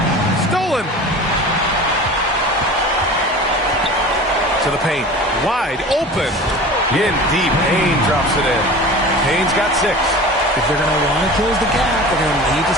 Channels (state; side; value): normal; both; correlation 0.37